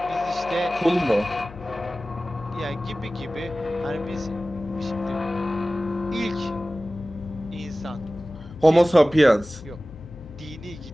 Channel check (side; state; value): left; noise; hum, 18 dB below the sound